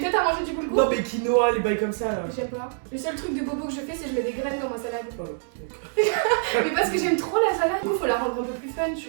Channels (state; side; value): silent; left; 61 dB below the other